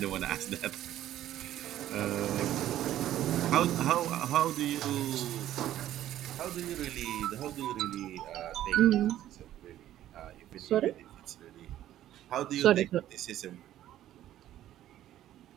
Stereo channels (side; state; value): left; quieter; 12.7 dB